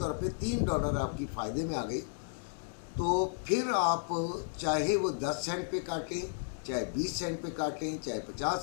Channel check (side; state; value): right; silent; digital silence